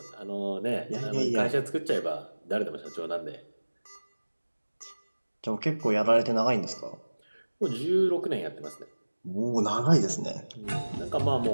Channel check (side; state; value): both; inverted; correlation -1.00